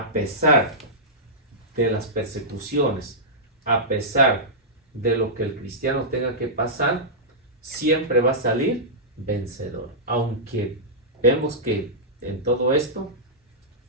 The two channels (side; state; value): both; normal; correlation -0.13